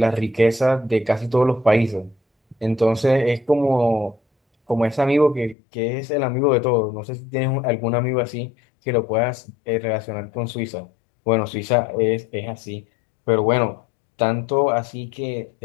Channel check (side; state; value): right; drops out; at 5.6 s